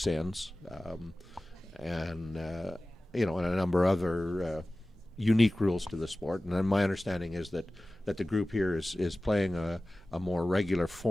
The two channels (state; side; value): normal; both; correlation 0.97